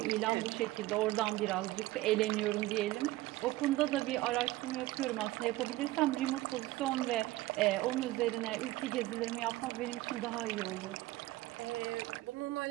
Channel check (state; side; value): quieter; left; 17.7 dB